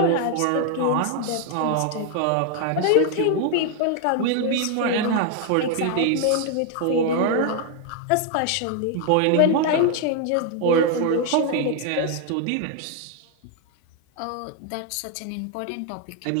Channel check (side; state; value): both; different; correlation 0.00